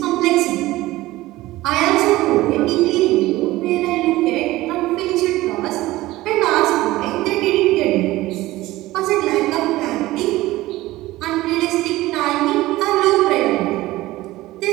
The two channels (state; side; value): quieter; left; 17.7 dB